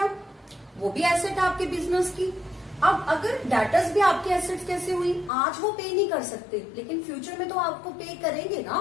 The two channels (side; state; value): right; drops out; at 5.3 s